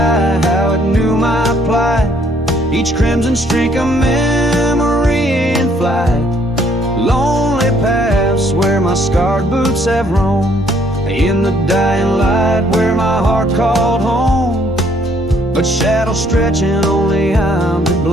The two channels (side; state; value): both; normal; correlation 0.65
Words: how it knew my plight. Each crimson streak a memory in flight. Lonely paths where my scarred boots have roamed. In the dying light where my heart called home. But shadows stretching, only I'm to